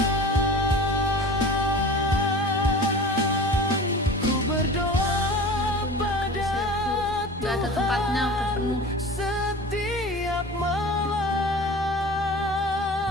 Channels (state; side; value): normal; both; correlation 0.37